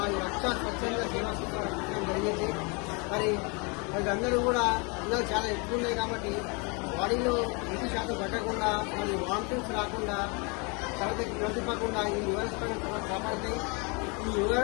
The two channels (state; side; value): quieter; right; 31.6 dB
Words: రక్ష స్వచ్ఛంద సేవా సంస్థ రక్షించడం జరిగింది. మరి అందరూ కూడా ఎండలు చాలా ఎక్కువ ఉన్నాయి కాబట్టి బాడీలో 20% పట్టకుండా మరి వామిటింగ్స్ రాకుండా తరగతి ప్రతిపకుండా ఈ ఓఆర్ఎస్ ప్యాకెట్ కాపాడుతాయి. ఈ